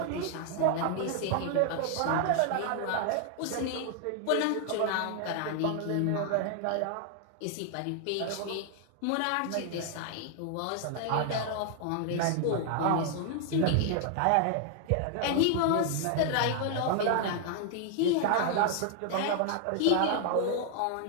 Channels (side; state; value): both; different; correlation 0.00